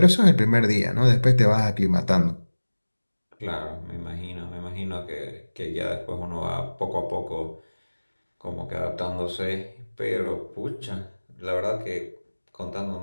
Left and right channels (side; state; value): both; inverted; correlation -1.00